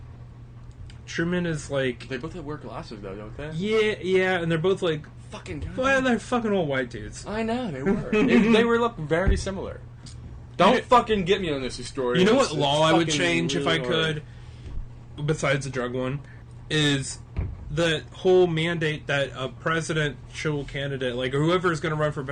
Truman is like, They both have wear glasses though, don't they? yeah, and they're both like, Fucking God. well, they're fucking old white dudes. I know, they were. they were look very similar. Don't fucking get me on this story. You know what It's law I would fucking change if I really hard. could, besides the drug one, is the whole mandate that a presidential candidate, like whoever is going to run for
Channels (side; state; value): both; identical; correlation 1.00